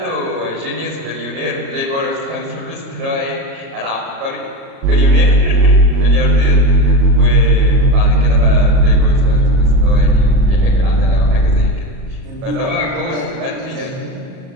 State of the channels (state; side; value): late; left; 37 ms